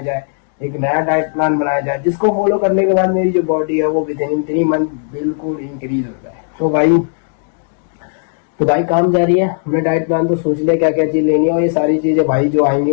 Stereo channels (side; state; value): right; silent; digital silence